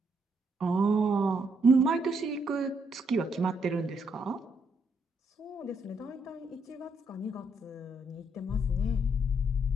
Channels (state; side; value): normal; both; correlation 0.75